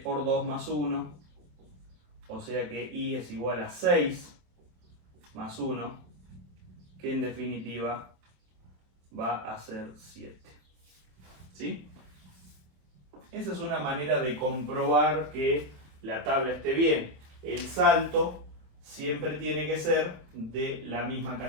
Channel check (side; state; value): left; late; 27 ms